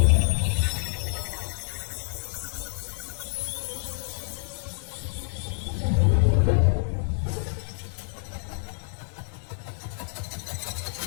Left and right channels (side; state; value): right; silent; 60 dB below the other